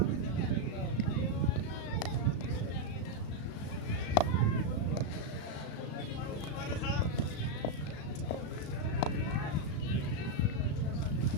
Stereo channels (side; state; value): right; late; 35 ms